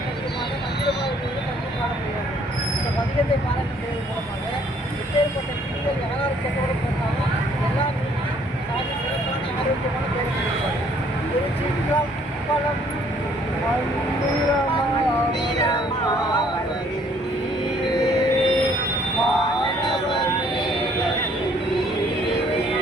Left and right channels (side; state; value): both; normal; correlation 0.62